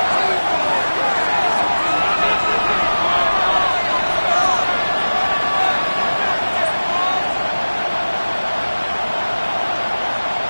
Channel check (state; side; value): inverted; both; correlation -1.00